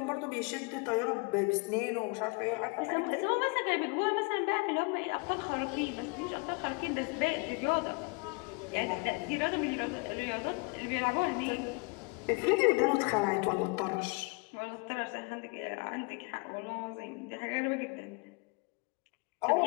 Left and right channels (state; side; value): quieter; right; 31.2 dB